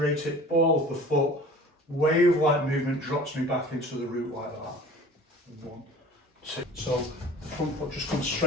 it, ball of the foot, wave-like movement drops me back into the root like that. 1, 2. So the front foot just comes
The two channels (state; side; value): normal; both; correlation 0.43